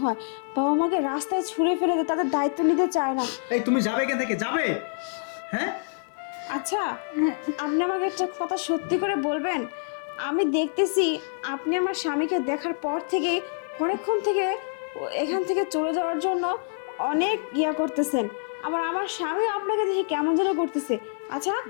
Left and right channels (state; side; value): silent; right; digital silence